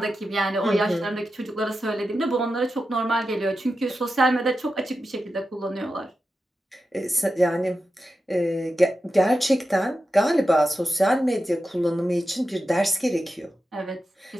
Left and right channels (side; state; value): both; normal; correlation 0.91